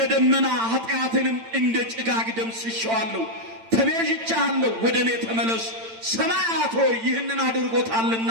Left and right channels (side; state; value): left; late; 8.9 ms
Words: ደመና ኃጢአትንም እንደ ጭጋግ ደምስሼዋለሁ። ተቤዥቼሃለሁ፣ ወደ እኔ ተመለስ። ሰማያት ሆይ ይህንን አድርጎታልና